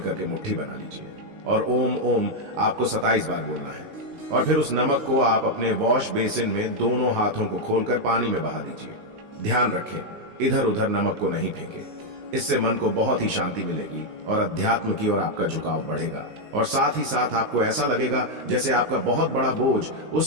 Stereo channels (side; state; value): left; late; 19 ms